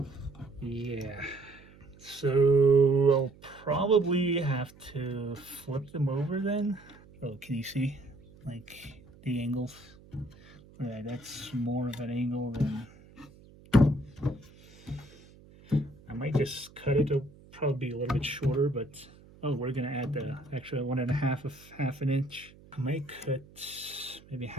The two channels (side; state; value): right; noise; hum, 24 dB below the sound